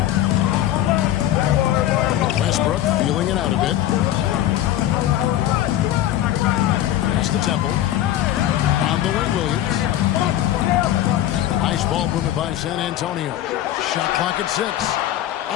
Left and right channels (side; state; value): right; quieter; 12.8 dB